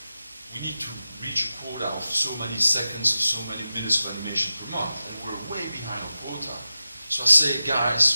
we need to reach a quota of so many seconds, so many minutes of animation say,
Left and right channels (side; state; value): both; inverted; correlation -0.92